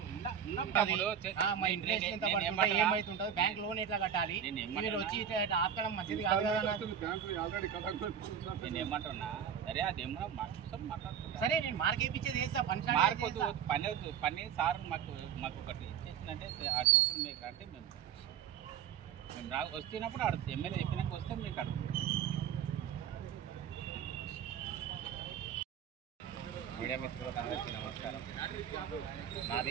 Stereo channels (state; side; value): quieter; left; 8.4 dB